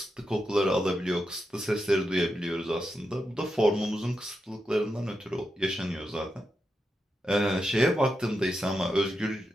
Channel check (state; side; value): normal; both; correlation 0.87